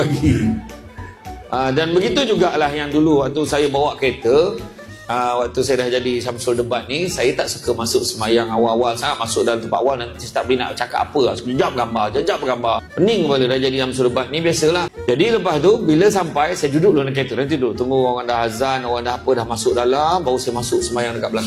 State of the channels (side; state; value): both; identical; correlation 1.00